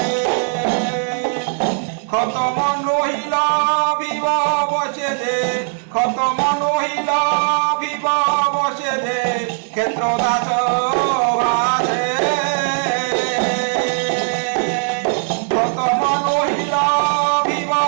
খতম নহিল ভিব বসে যে খতম নহিল ভিব বসে যে ক্ষেত্র দাস ভাসে খতম নহিল ভিব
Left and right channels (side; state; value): left; silent; 59 dB below the other